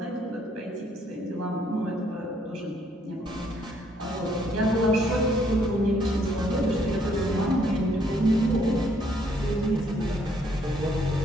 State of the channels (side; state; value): both; normal; correlation 0.68